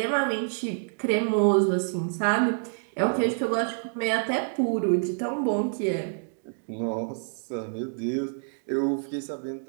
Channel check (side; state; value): left; silent; digital silence